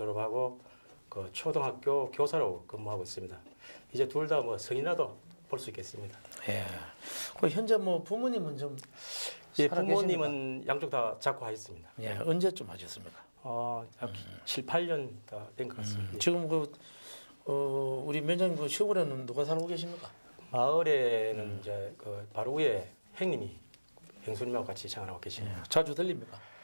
그 초등학교 교사로 근무하고 있습니다. 이제 둘 다 뭐 성인이라도 볼 수 있겠습니다. 예. 그 현재 뭐 부모님은 좀 예, 부모님은 양쪽 다 작고하셨습니다. 예, 언제쯤 하셨습니까? 약 7, 8년 다 된 것 같습니다. 지금 우리 면장님 그 시골에는 누가 살고 계십니까? 마을에는 이제 그 바로 위에 형님이 형수님하고 같이 생활하고 계십니다. 예, 자주 들립니까?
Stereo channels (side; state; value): both; inverted; correlation -1.00